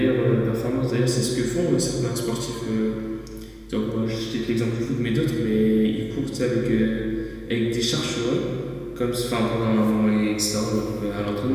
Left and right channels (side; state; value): both; identical; correlation 1.00